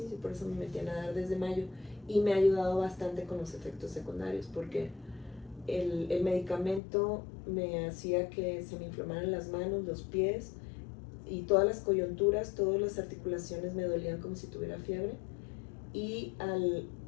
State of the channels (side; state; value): right; drops out; at 6.8 s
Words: Por eso me metí a nadar desde mayo, y me ha ayudado bastante con los efectos secundarios, porque el medicamento me hacía que se me inflamaran las manos, los pies, y todas las coyunturas, todas las articulaciones me dolían como si tuviera fiebre, y